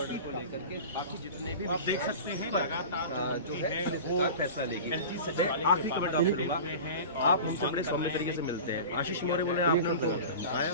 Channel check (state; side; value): inverted; both; correlation -0.34